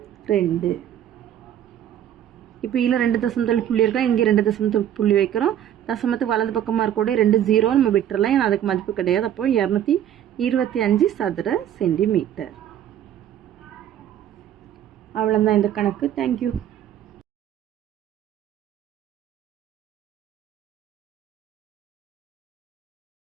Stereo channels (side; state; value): left; quieter; 10.7 dB